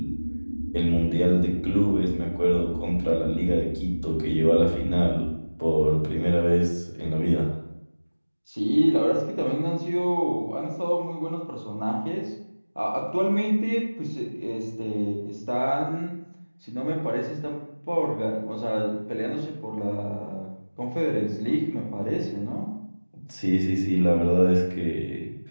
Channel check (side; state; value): both; inverted; correlation -1.00